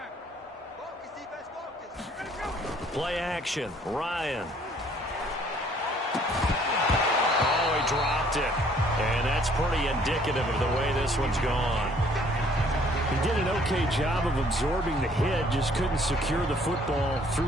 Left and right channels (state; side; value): normal; both; correlation 0.60